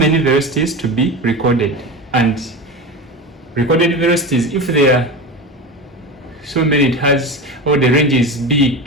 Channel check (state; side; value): normal; both; correlation 0.26